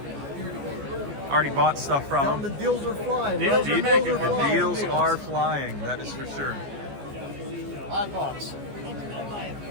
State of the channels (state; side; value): late; left; 14 ms